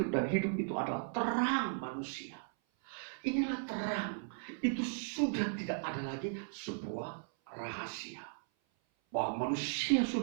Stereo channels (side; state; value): left; silent; 53 dB below the other